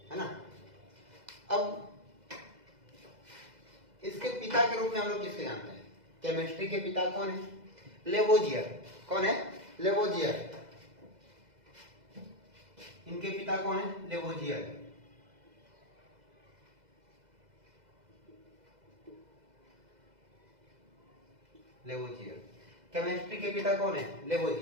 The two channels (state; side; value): late; left; 2.0 ms